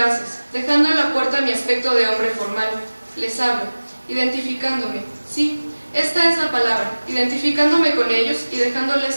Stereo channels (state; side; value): inverted; both; correlation -1.00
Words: dejando en la puerta mi aspecto de hombre formal. Les hablo, identificándome, sí, esta es la palabra, identificándome con ellos y